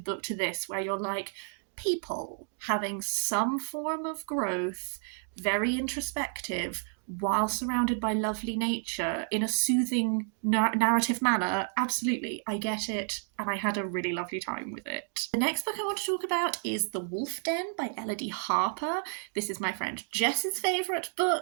book to this, where you're like, people having some form of growth, very introspective, while surrounded by lovely nature in a soothing narrative manner. Absolutely, I get it, and I had a really lovely time with it. The next book I want to talk about is The Wolf Den by Elodie Harper. This is my friend Jess's favourite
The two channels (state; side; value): silent; left; 57 dB below the other